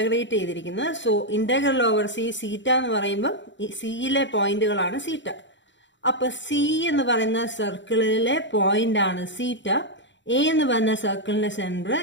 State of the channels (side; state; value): right; late; 0.54 ms